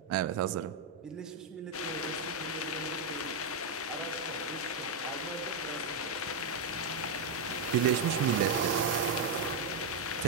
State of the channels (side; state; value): left; quieter; 3.3 dB